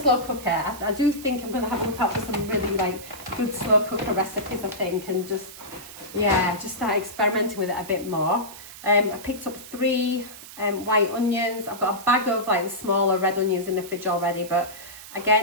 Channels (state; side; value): noise; right; hiss, 15 dB below the sound